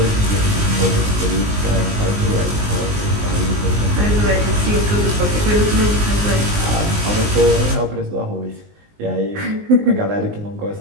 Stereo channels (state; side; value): late; left; 19 ms